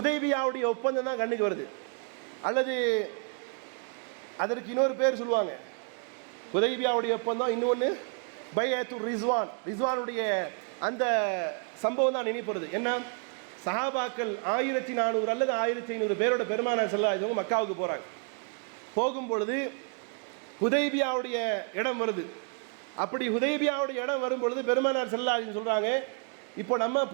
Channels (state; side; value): quieter; left; 39.5 dB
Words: ஒப்பந்தம் தான் கண்ணுக்கு வருது. அல்லது அதற்கு இன்னொரு பேர் சொல்லுவாங்க, ஹுதைபியாவுடைய ஒப்பந்தம், இன்னொன்று பைஅத்துர் ரிஸ்வான், ரிஸ்வானுடைய அந்த சம்பவம் தான் நினைப்பது. என்ன, சஹாபாக்கள் 1400 அல்லது 1500 பேரோட பெருமானார் ஸல்லல்லாஹு அலைஹி வஸல்லம் மக்காவுக்கு போகிறாங்க. போகும்பொழுது ஹுதைபியாவுடைய இடம் வருது. அப்படி ஹுதைபியாவுடைய இடம் வரும் பொழுது பெருமானார் ஸல்லல்லாஹு அலைஹி வஸல்லம் சொல்கிறாங்க, இப்போ நம்ம